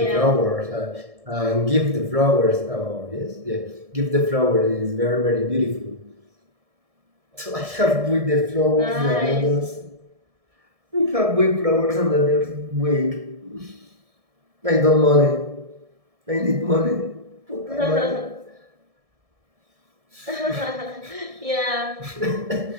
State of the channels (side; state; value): left; late; 1.7 ms